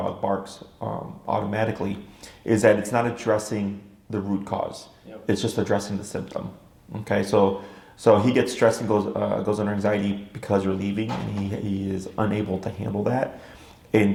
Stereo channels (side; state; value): both; identical; correlation 1.00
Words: barks automatically. Is that it's not addressing the root cause. Yep. It's just addressing the symptom. Okay. So he gets stressed and goes under anxiety because you're leaving, and he is unable to handle that, and